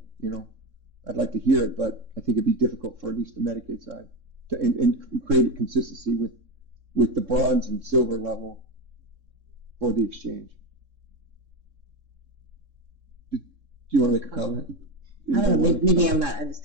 like to hear it, but I think it'd be difficult for at least the Medicaid side and create a consistency with the bronze and silver level for the exchange. Do you want to make a comment? I don't know, maybe I'm not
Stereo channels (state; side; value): late; left; 3.6 ms